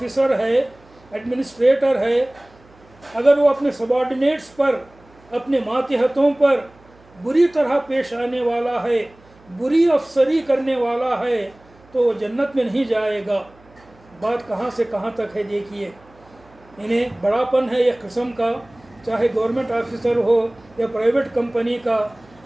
ہے، ایڈمنسٹریٹر ہے، اگر وہ اپنے سبارڈینیٹس پر، اپنے ماتحتوں پر بری طرح پیش آنے والا ہے، بری افسری کرنے والا ہے، تو وہ جنت میں نہیں جائے گا۔ بات کہاں سے کہاں تک ہے دیکھیے، انہیں بڑا پن ہے ایک قسم کا، چاہے گورنمنٹ آفیسر ہو یا پرائیویٹ کمپنی کا،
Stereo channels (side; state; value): right; noise; hum, 28 dB below the sound